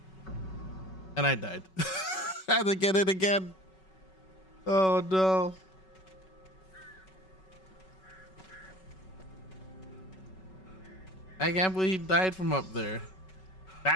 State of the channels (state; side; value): late; right; 5.3 ms